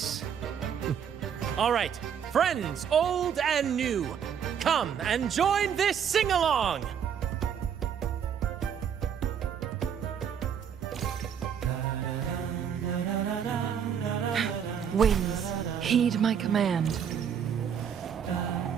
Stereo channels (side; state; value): left; quieter; 8.0 dB